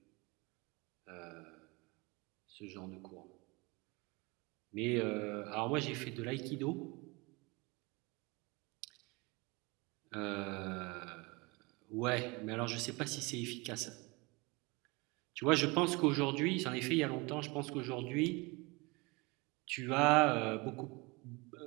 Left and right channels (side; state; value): left; quieter; 26.3 dB